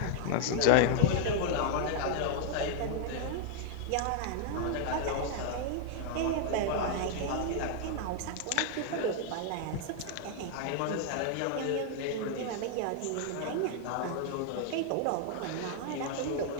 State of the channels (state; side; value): different; both; correlation 0.00